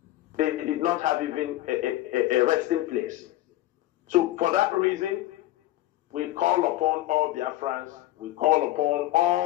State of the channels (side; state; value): right; quieter; 15.7 dB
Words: They did not have even a resting place. So for that reason, we call upon all Biafrans, we call upon